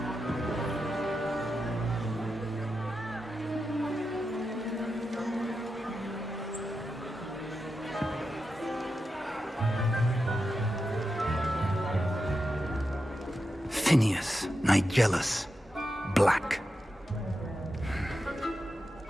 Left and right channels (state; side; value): normal; both; correlation 0.89